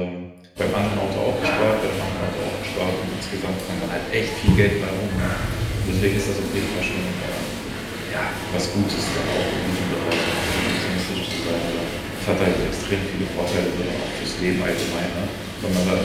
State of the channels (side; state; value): both; identical; correlation 1.00